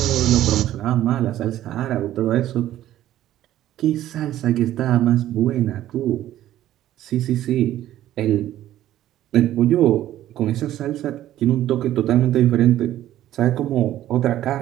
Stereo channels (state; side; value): quieter; left; 13.1 dB